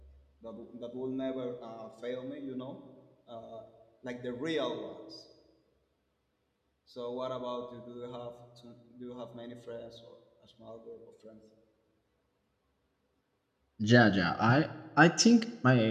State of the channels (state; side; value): identical; both; correlation 1.00